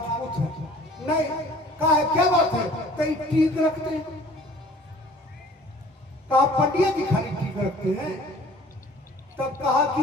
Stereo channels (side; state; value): both; normal; correlation 0.51